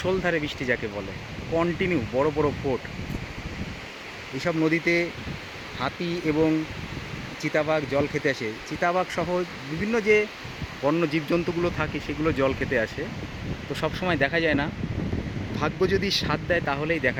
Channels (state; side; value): identical; both; correlation 1.00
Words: বৃষ্টি যাকে বলে, কন্টিনিউ বড় বড় ফোঁট। এইসব নদীতে হাতি এবং চিতাবাঘ জল খেতে আসে। চিতাবাঘ সহ বিভিন্ন যে বন্য জীবজন্তুগুলো থাকে সেগুলো জল খেতে আসে। তো সব সময় দেখা যায় না, ভাগ্য যদি সাথ দেয় তাহলেই